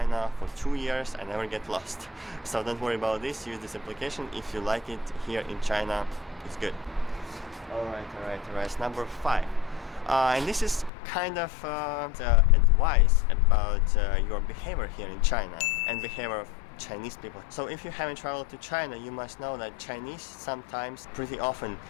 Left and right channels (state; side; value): drops out; right; at 10.9 s